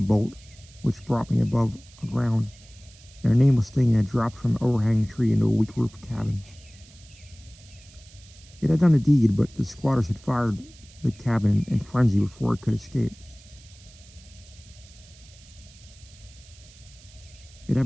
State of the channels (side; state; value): right; noise; hiss, 24 dB below the sound